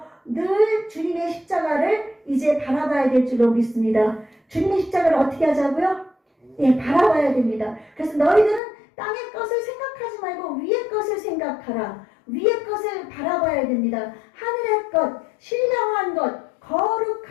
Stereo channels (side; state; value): right; drops out; at 8.6 s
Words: 늘 주님의 십자가를 이제 바라봐야 될 줄로 믿습니다. 주님의 십자가를 어떻게 하자고요? 예, 바라봐야 됩니다. 그래서 너희들은 땅의 것을 생각하지 말고 위의 것을 생각하라. 위의 것을 바라봐야 됩니다. 하늘의 것, 신령한 것,